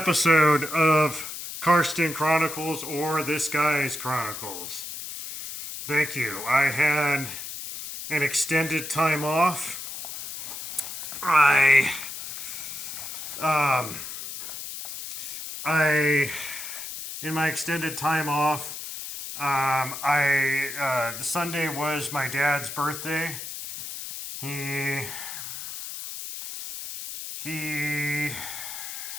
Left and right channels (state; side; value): noise; left; hiss, 8 dB below the sound